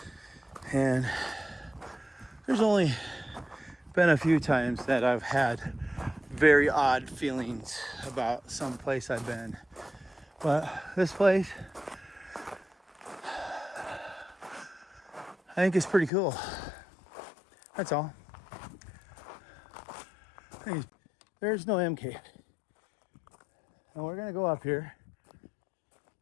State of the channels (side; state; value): right; drops out; at 16.1 s